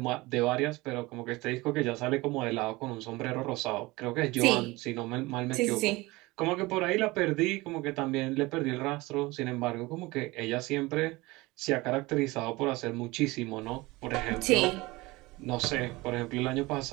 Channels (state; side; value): quieter; left; 21.7 dB